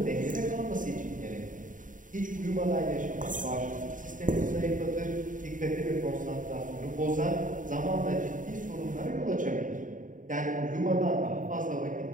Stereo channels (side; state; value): left; late; 0.38 ms